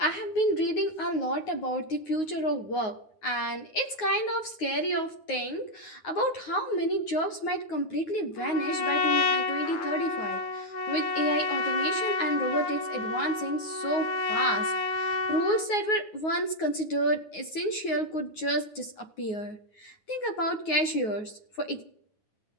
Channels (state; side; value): late; right; 9.5 ms